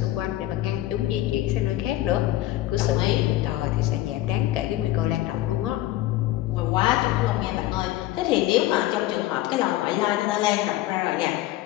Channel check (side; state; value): right; quieter; 15.4 dB